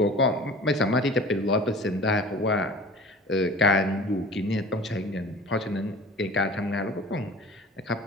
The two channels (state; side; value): normal; both; correlation 0.42